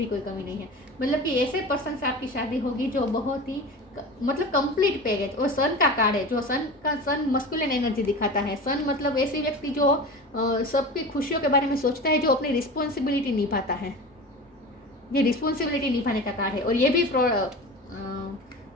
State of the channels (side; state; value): both; normal; correlation 0.32